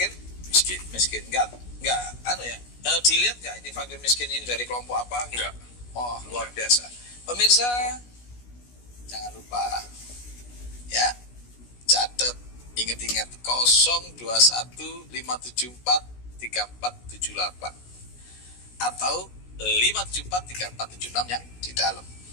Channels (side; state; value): right; late; 16 ms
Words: Miskin. Enggak, dilihat enggak ini fakir miskin ini dari kelompok apa? Enggak. Oh, luar biasa. Pemirsa, jangan lupa, ya, catat, ingat-ingat 0215743478 atau 5743476 yang di dalam.